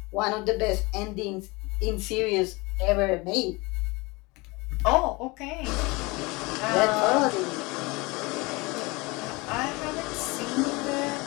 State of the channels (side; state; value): right; quieter; 25.0 dB